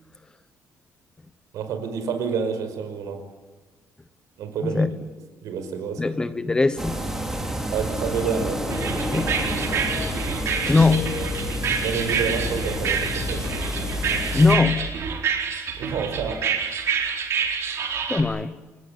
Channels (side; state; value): both; normal; correlation 0.57